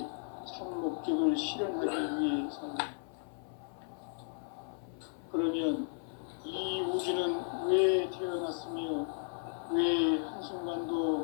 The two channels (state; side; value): silent; right; 55 dB below the other